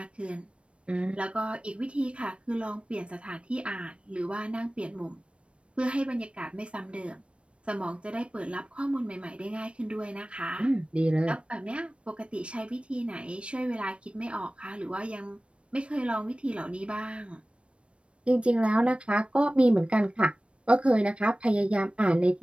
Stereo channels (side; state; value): left; late; 0.060 ms